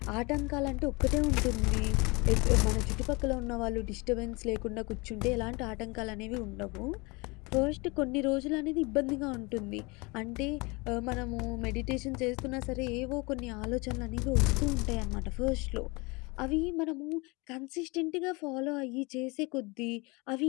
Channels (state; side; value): quieter; right; 26.8 dB